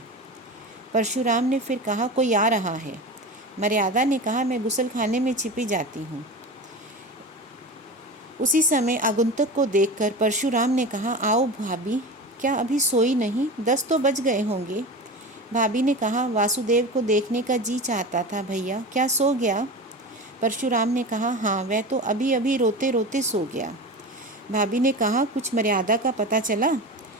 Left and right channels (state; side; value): normal; both; correlation 0.29